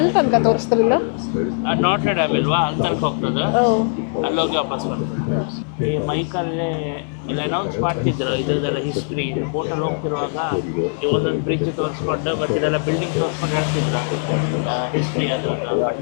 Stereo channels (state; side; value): silent; right; 65 dB below the other